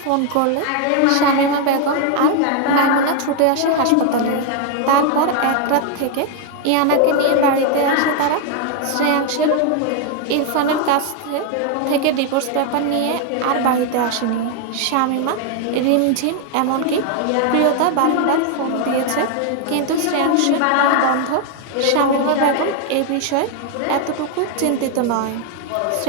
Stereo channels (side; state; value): both; different; correlation 0.00